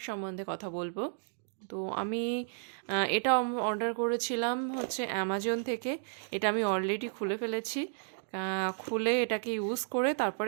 সম্বন্ধে কথা বলবো। তো আমি এটা অর্ডার করেছিলাম হচ্ছে অ্যামাজন থেকে। এটা আমি অলরেডি খুলে ফেলেছি। খুলে এটাকে ইউজ করে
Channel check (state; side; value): silent; left; digital silence